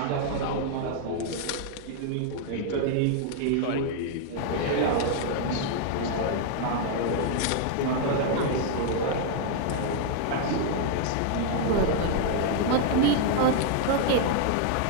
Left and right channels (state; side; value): different; both; correlation 0.00